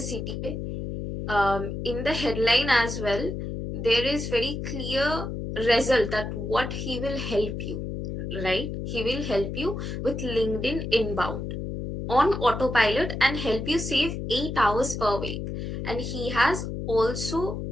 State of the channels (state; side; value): noise; left; hum, 5 dB below the sound